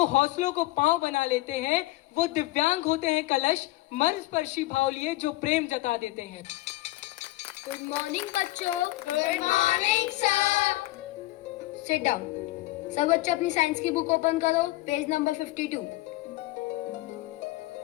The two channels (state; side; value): quieter; right; 18.6 dB